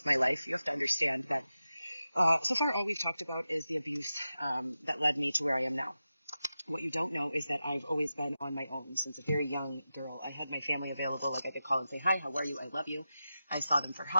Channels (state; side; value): inverted; both; correlation -0.91